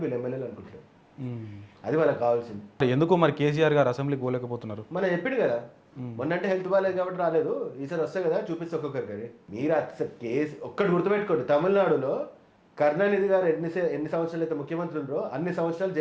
వీళ్ళు ఎమ్మెల్యేలు అనుకుంటలేరు. అది వాళ్ళకి కావాల్సింది. ఎందుకు మరి కేసీఆర్ గారు అసెంబ్లీకి పోలేకపోతున్నారు? మనం చెప్పిండు కదా, మొన్నంటే హెల్త్ బాగాలేదు కాబట్టి రాలేదు, ఈసారి వస్తాయి కదా చూపిస్తే ఒక్కొక్కరు. కానీ మీరు అసలు కేసు ఒక్కటి గుర్తుపెట్టుకోండి, తమిళనాడులో కరుణానిధి గారు ఎన్ని సంవత్సరాలు అయితే ముఖ్యమంత్రి ఉన్నారో అన్ని సంవత్సరాలు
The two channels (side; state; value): both; identical; correlation 1.00